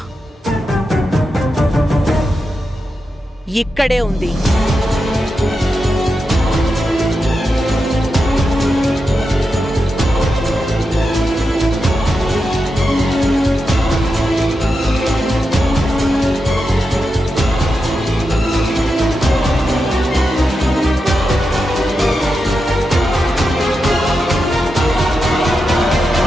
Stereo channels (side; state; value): both; normal; correlation 0.88